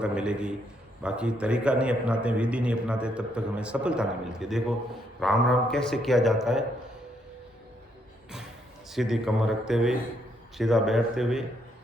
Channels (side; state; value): both; normal; correlation 0.74